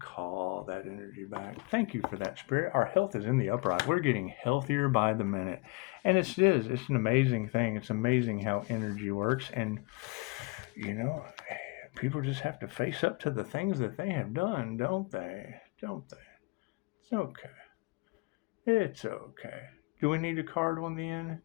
call that energy back. Thank you for that, Spirit. Our health is in the upright. We're getting healthier by the minute. And it's an amazing thing. It's amazing how energy works. And, people just have to face up to the things that they have done, don't they? It's okay. It's okay. Do we need a card on the end?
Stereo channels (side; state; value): right; quieter; 26.9 dB